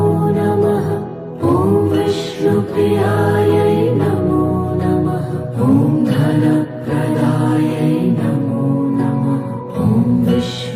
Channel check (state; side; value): identical; both; correlation 1.00